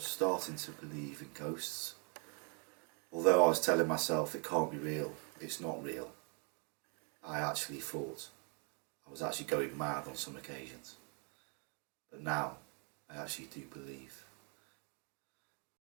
starting to believe in ghosts. Although I was telling myself it can't be real, it's not real. I actually thought I was actually going mad on some occasions. But now, I actually do believe.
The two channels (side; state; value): left; quieter; 36.8 dB